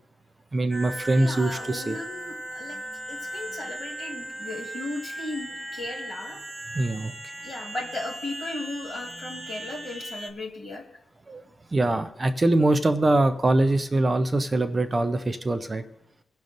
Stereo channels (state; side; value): normal; both; correlation 0.94